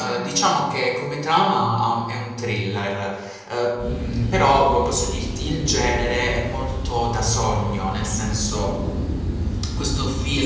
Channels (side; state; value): both; identical; correlation 1.00